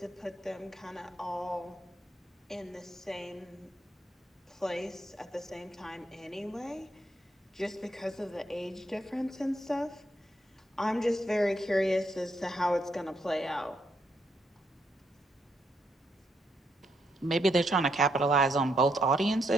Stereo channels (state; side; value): normal; both; correlation 0.77